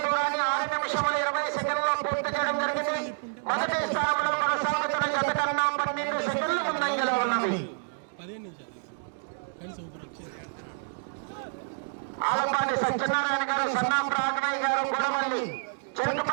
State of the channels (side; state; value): left; silent; digital silence